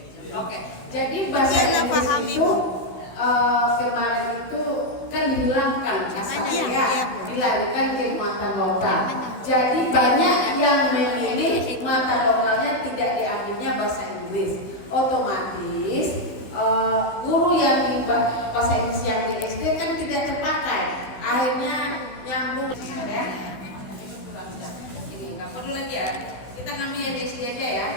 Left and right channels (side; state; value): right; late; 16 ms